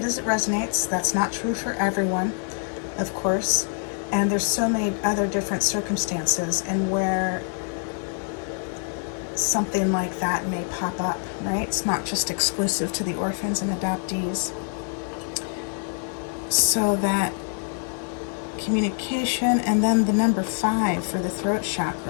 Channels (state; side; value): silent; right; 56 dB below the other